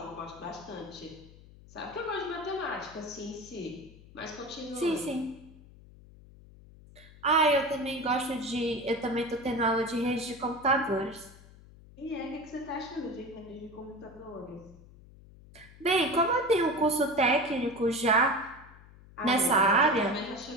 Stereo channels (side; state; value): left; noise; hum, 21 dB below the sound